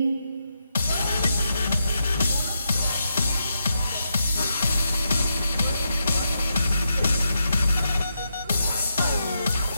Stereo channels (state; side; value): inverted; both; correlation -0.83